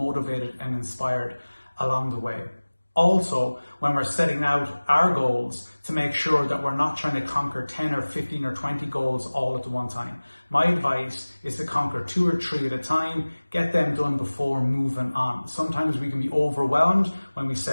and inspired along the way. Also, when we're setting out our goals, to make sure that we're not trying to conquer 10 or 15 or 20 goals all at the one time. My advice is to conquer 2 or 3 at a time, get them done before moving on. Sometimes we can be overwhelmed when we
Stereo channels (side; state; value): both; inverted; correlation -1.00